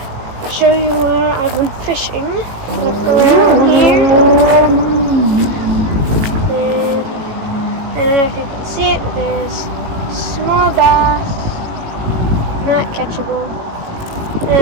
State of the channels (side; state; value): left; late; 18 ms